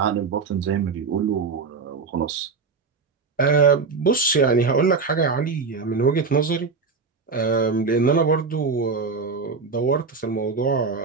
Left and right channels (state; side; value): quieter; left; 4.7 dB